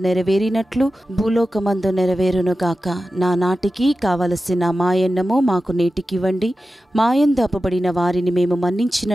నెరవేరినట్లు భూలోకమందు నెరవేరును గాక. నా నాటికి కావలసిన మాయన్నము మాకు నేటికివ్వండి, మాయందు అప్పబడిన వారిని మేము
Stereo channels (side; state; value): both; normal; correlation 0.93